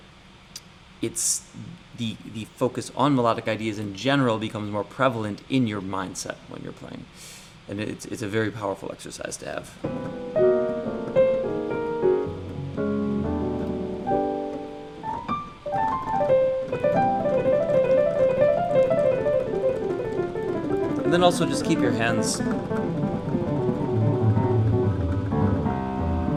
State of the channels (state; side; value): identical; both; correlation 1.00